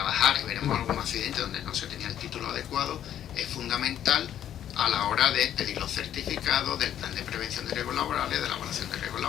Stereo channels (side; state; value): right; quieter; 10.5 dB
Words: y veremos algún accidente donde no se tenía el título adecuado, es fundamental a la hora de pedir los certificados del plan de prevención de riesgos laborales, de la evaluación de riesgos